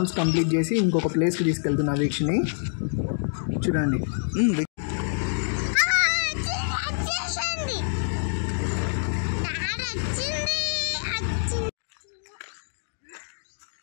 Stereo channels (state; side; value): silent; right; digital silence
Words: complete చేసి ఇంకొక ప్లేస్కి తీసుకెళ్తున్నా వీక్షని. చూడండి.